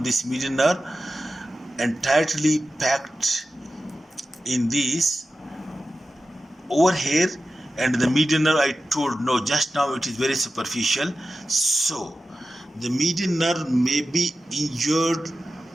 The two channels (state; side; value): normal; both; correlation 0.93